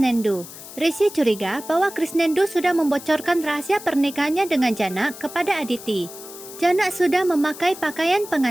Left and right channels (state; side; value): noise; left; hiss, 15 dB below the sound